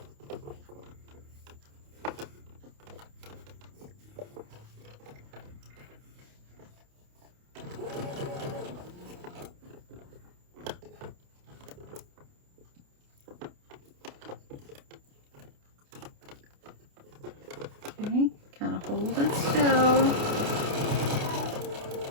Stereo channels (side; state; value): left; late; 28 ms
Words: Okay, kind of hold it still.